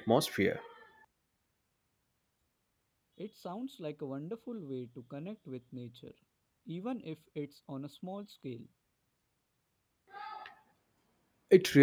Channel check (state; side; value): identical; both; correlation 1.00